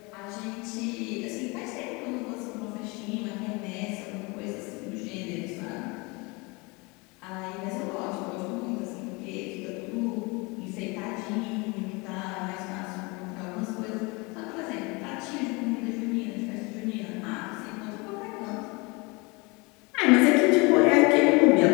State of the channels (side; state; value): right; quieter; 27.2 dB